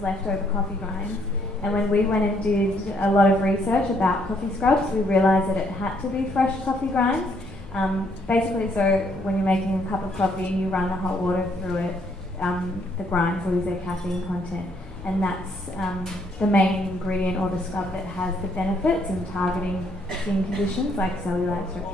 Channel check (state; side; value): normal; both; correlation 0.69